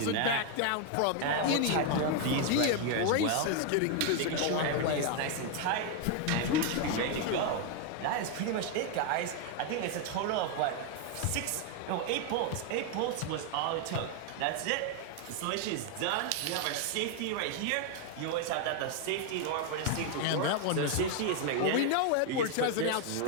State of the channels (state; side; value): different; both; correlation 0.01